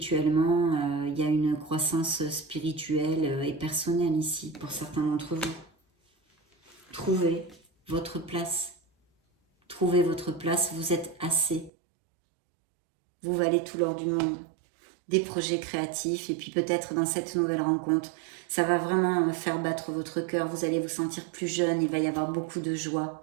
il y a une croissance spirituelle et personnelle ici pour certains d'entre vous. Trouvez votre place. Trouvez votre place, vous êtes assez. Vous valez tout l'or du monde. Des projets créatifs et puis peut-être dans cette nouvelle rencontre, ça va vraiment faire battre votre cœur, vous allez vous sentir plus jeune, il va y avoir beaucoup de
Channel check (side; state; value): left; drops out; at 11.7 s